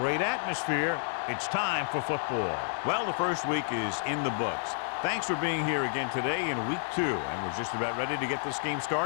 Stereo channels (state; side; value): silent; right; digital silence